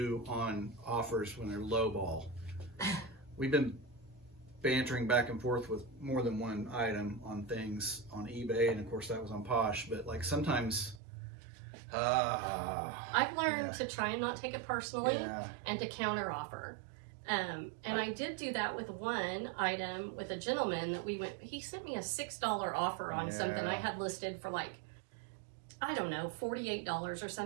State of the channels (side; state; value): left; drops out; at 11.0 s